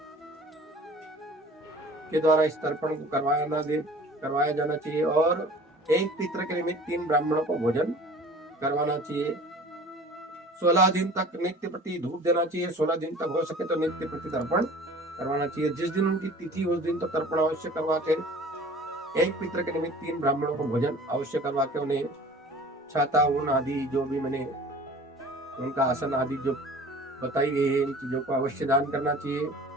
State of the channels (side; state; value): both; normal; correlation 0.45